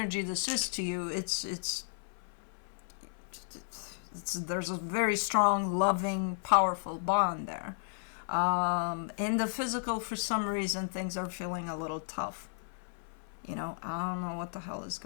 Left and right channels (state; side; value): silent; right; 55 dB below the other